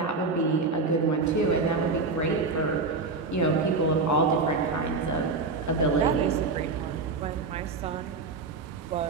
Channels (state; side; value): quieter; left; 4.0 dB